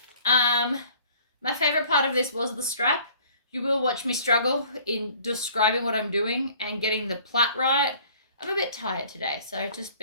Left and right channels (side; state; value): both; inverted; correlation -0.53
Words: My favorite part of this was the strap. You will watch me struggle in describing what I'm doing and getting the plait right. I'm a bit tired today, so just